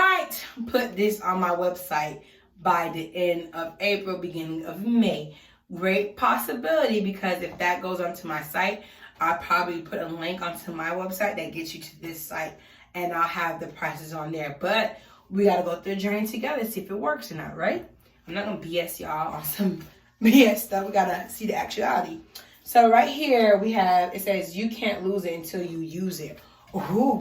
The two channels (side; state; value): both; identical; correlation 1.00